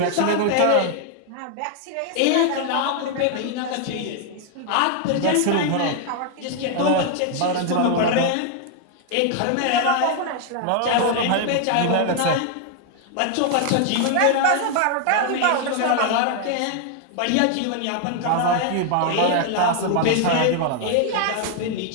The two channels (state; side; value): different; both; correlation 0.00